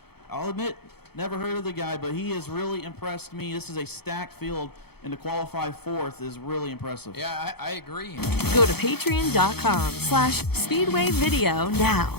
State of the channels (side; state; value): right; late; 0.96 ms